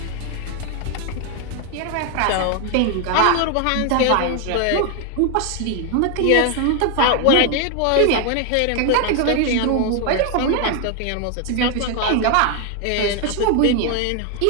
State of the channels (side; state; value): both; different; correlation 0.01